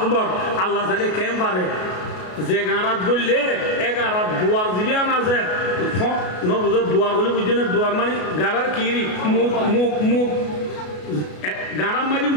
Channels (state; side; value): late; right; 33 ms